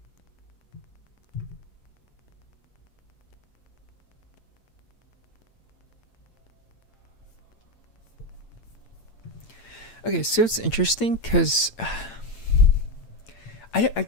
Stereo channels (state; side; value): late; right; 8.9 ms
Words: Okay, so it's interesting because I